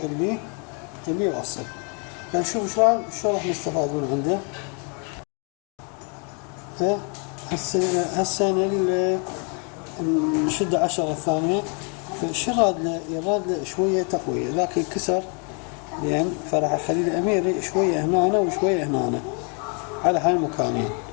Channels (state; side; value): quieter; right; 37.5 dB